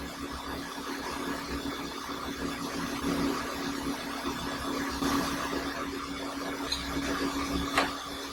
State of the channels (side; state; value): both; identical; correlation 1.00